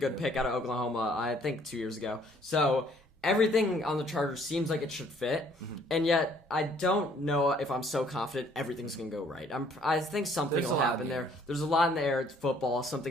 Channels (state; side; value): normal; both; correlation 0.61